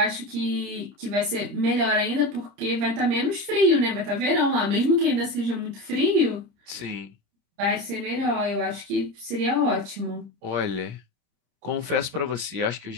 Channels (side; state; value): left; late; 30 ms